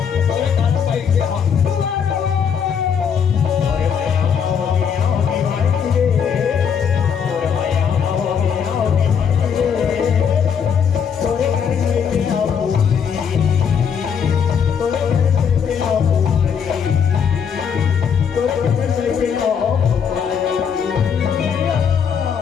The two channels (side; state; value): right; quieter; 7.2 dB